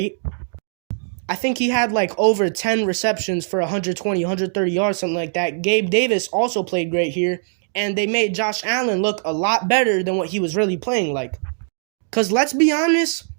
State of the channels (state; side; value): silent; left; digital silence